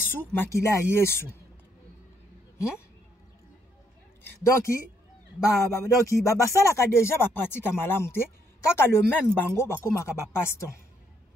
Makila Yesu. Donc, donc basala déjà ba pratique malamu te kaka le même bango bakomaka ba paston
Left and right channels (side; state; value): both; normal; correlation 0.72